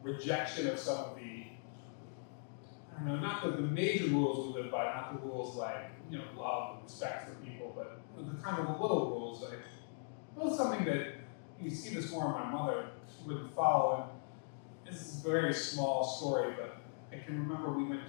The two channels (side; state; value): right; silent; digital silence